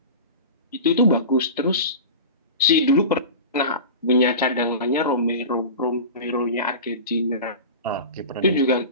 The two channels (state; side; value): inverted; both; correlation -0.31